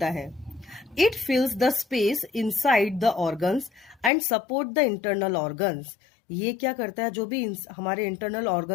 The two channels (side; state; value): right; drops out; at 4.1 s